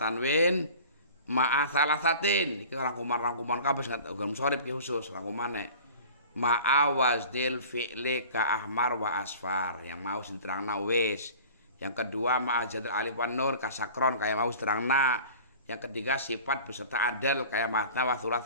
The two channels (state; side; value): inverted; both; correlation -0.41